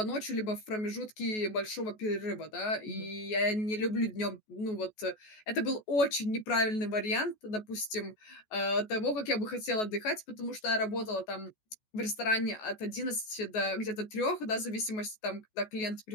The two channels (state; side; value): late; right; 14 ms